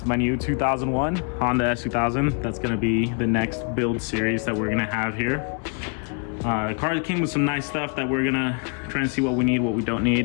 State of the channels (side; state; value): right; quieter; 38.8 dB